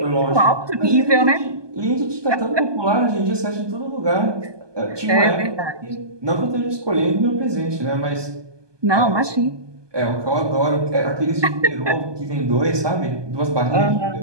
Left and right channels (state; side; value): late; left; 1.2 ms